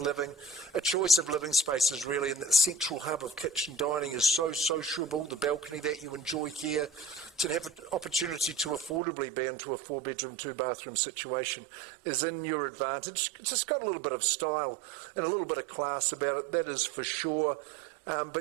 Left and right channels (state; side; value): drops out; left; at 9.0 s